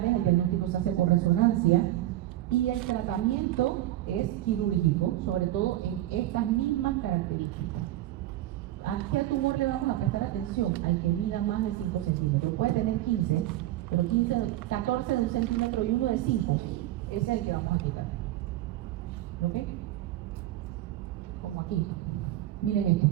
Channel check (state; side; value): quieter; left; 14.6 dB